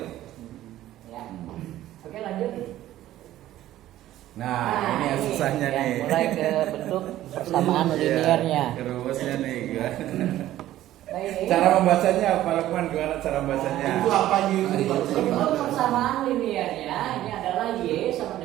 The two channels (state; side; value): quieter; left; 13.9 dB